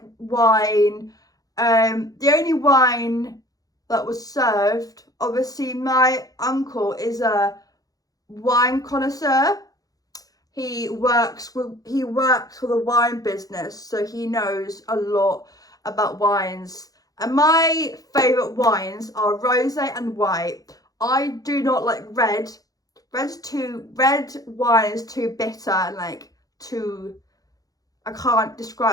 wine. The only wine that was served, obviously my uncle is a wine connoisseur. He works for the wine business, so he knows a lot about wines. And my favourite wines are rosé and white. I do not like red. Red wine is too bitter and like too, I can't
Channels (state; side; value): late; right; 0.18 ms